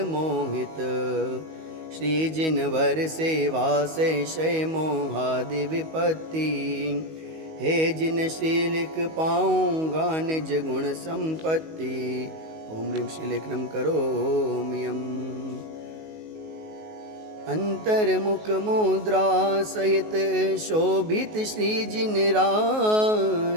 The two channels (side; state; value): left; late; 19 ms